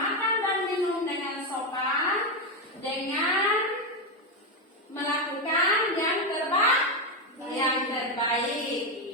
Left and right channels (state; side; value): normal; both; correlation 0.08